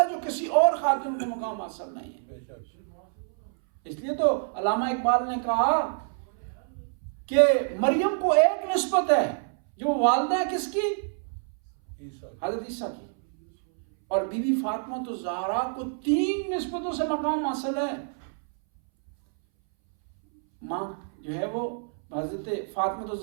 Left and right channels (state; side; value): silent; left; 60 dB below the other